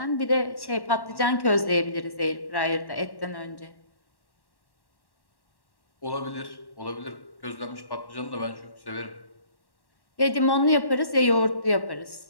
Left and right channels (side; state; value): right; late; 1.1 ms